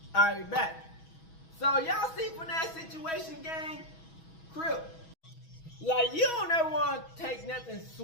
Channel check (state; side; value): late; right; 6.2 ms